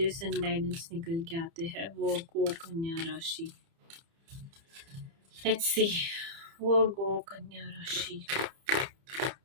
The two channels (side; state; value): left; late; 30 ms